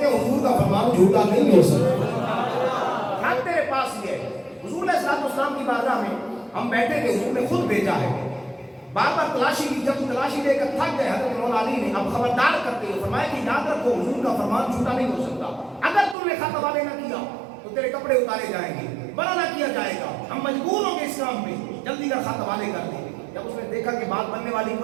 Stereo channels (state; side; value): drops out; left; at 16.2 s